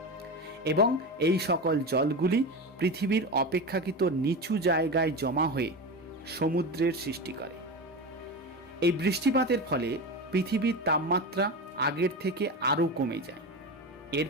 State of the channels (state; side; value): normal; both; correlation 0.23